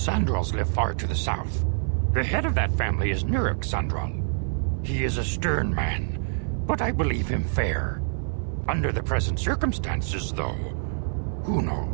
live far to the south. The head of that family is Nurik Sandral. He is a stern man, but I believe him fair. Under the present circumstances, though, who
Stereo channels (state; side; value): silent; left; 61 dB below the other